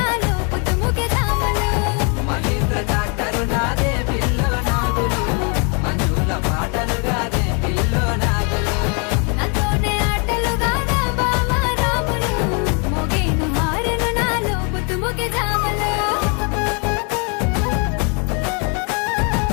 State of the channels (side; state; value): right; quieter; 35.8 dB